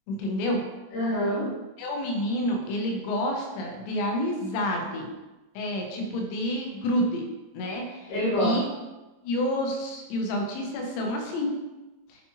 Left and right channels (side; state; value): right; late; 26 ms